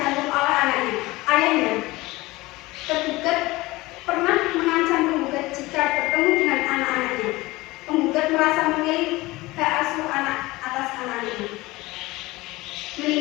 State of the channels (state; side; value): quieter; right; 20.4 dB